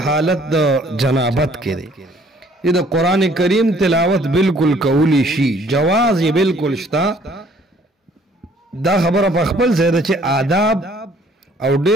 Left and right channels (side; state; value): both; normal; correlation 0.59